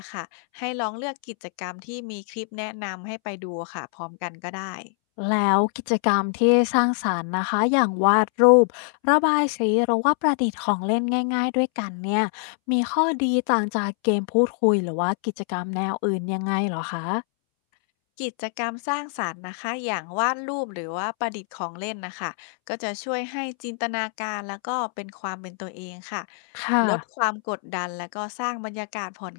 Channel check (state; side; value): silent; right; 62 dB below the other